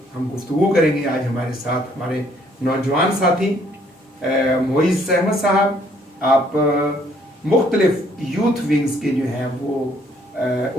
ہم گفتگو کریں گے۔ آج ہمارے ساتھ ہمارے نوجوان ساتھی معیز احمد صاحب، آپ مختلف یوتھ ونگز کے جو ہیں وہ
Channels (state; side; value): normal; both; correlation 0.64